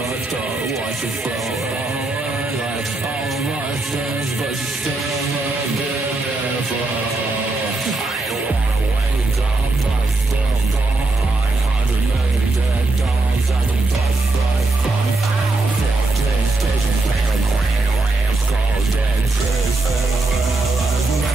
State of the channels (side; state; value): left; quieter; 3.2 dB